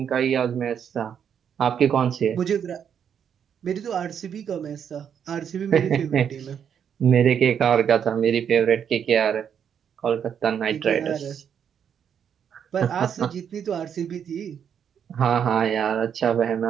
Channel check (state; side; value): quieter; left; 8.2 dB